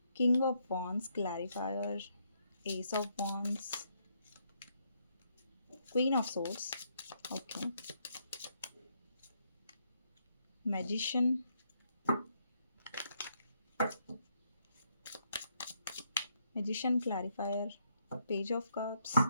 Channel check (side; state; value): both; inverted; correlation -0.75